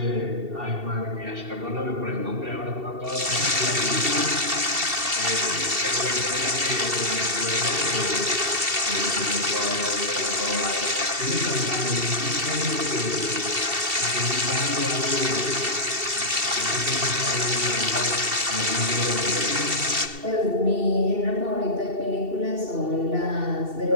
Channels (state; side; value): late; left; 2.7 ms